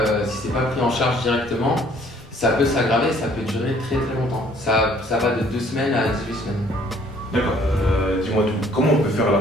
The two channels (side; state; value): both; normal; correlation 0.59